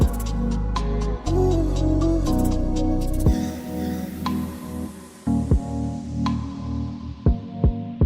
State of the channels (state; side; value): identical; both; correlation 1.00